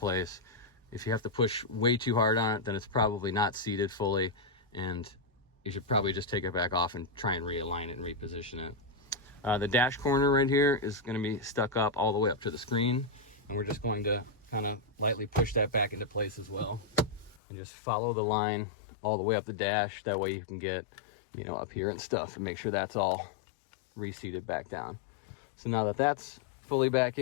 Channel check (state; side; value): drops out; right; at 17.4 s